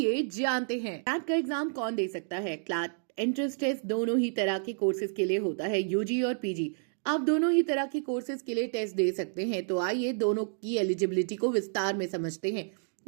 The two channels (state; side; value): silent; left; digital silence